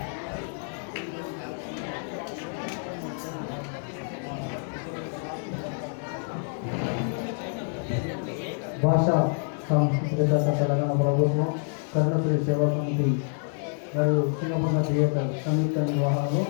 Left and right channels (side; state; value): right; silent; 57 dB below the other